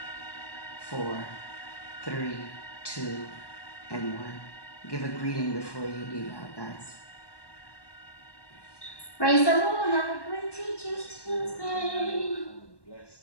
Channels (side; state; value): right; late; 1.1 ms